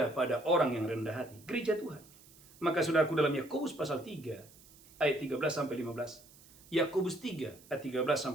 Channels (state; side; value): noise; right; hiss, 24 dB below the sound